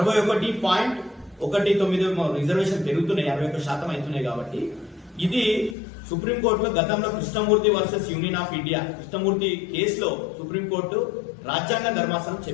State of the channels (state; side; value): drops out; right; at 5.8 s